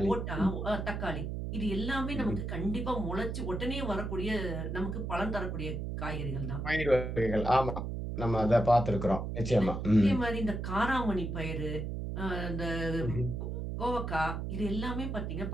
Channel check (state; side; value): noise; right; hum, 4 dB below the sound